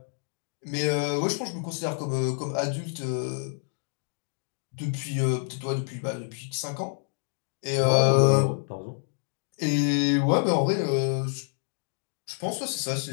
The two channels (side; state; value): right; silent; 59 dB below the other